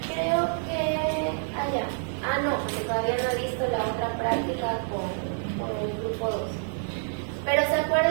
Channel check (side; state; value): left; silent; digital silence